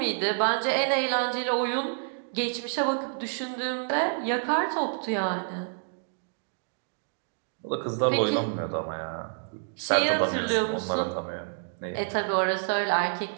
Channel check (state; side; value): silent; left; digital silence